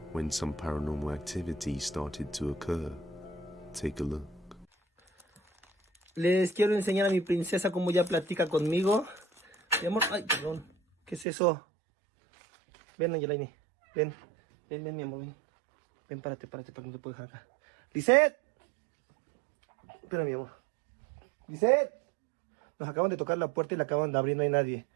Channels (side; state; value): left; drops out; at 11.2 s